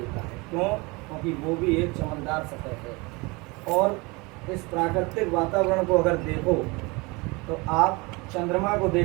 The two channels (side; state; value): left; quieter; 26.1 dB